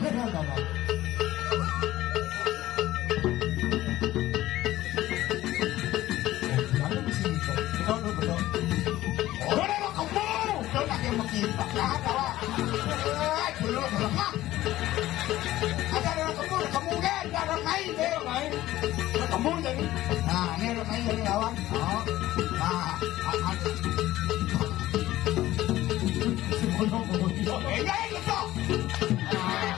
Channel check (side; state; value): right; quieter; 15.4 dB